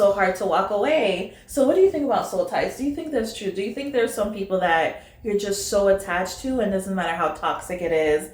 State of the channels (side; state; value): both; identical; correlation 1.00